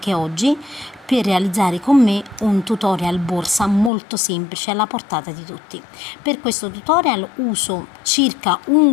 oggi per realizzare con me un tutorial borsa molto semplice alla portata di tutti. Per questo tutorial uso circa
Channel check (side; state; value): right; drops out; at 3.9 s